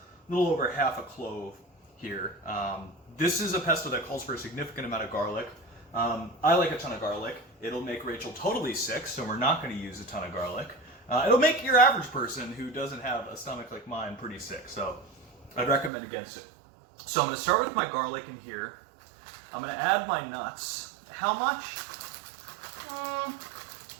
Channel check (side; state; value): left; drops out; at 15.9 s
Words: little over half a clove here. This is a pesto that calls for a significant amount of garlic. I like a ton of garlic. It'll make Rachel totally sick, so we're not going to use a ton of garlic. It'll make your average person who doesn't have a stomach like mine pretty sick, so I'd recommend against it. So I'm going to start with my garlic in here. I'm going to add my nuts. How much?